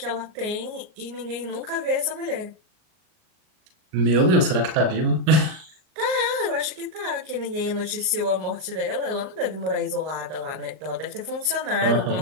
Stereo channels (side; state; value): left; late; 38 ms